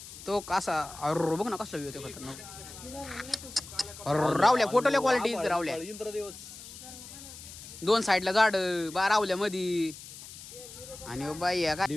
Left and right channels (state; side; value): noise; left; hiss, 15 dB below the sound